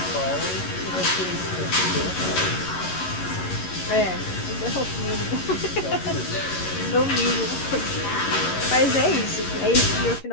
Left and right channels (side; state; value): right; late; 11 ms